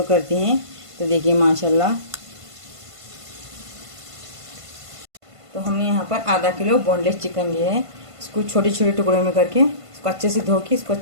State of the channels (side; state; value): left; late; 1.5 ms